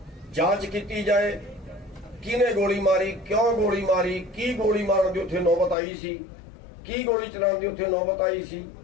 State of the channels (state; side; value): drops out; right; at 5.8 s